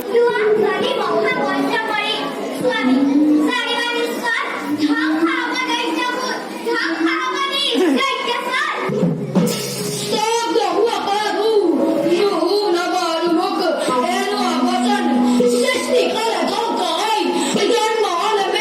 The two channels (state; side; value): identical; both; correlation 1.00